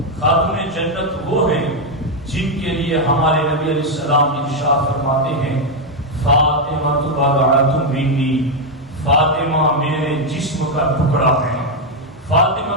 خاتون جنت وہ ہیں جن کے لیے ہمارے نبی علیہ السلام ارشاد فرماتے ہیں فاطمہ بضعۃ منی، فاطمہ میرے جسم کا ٹکڑا ہے۔ فاطمہ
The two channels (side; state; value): both; normal; correlation 0.02